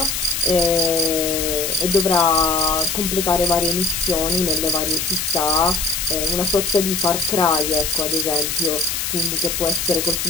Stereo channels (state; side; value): noise; left; hiss, 2 dB below the sound